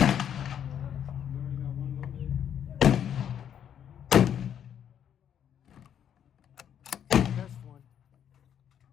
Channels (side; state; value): right; quieter; 9.2 dB